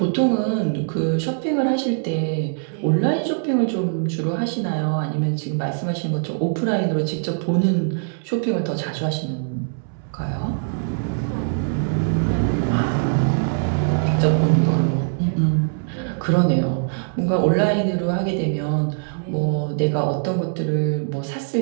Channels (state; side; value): silent; left; 64 dB below the other